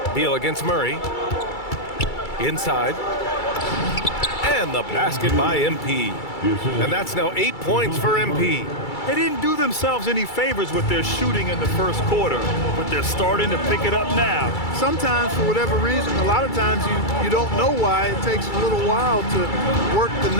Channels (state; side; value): late; right; 2.3 ms